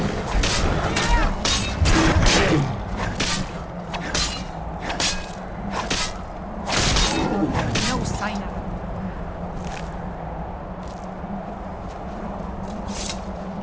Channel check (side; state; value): both; identical; correlation 1.00